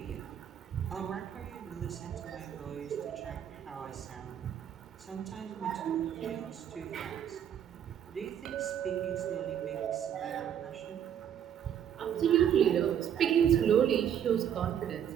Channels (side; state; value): left; quieter; 9.3 dB